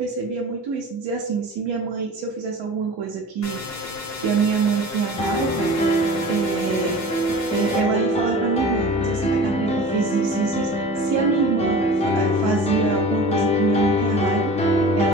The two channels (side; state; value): both; normal; correlation 0.38